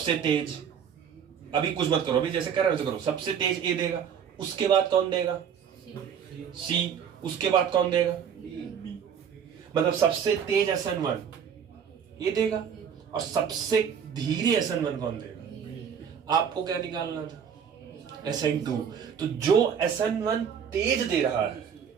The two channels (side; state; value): left; quieter; 7.7 dB